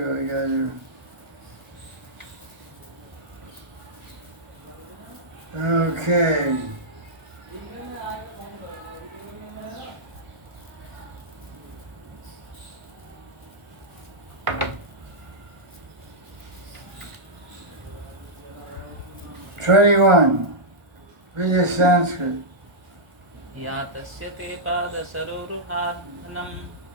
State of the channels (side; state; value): left; late; 1.0 ms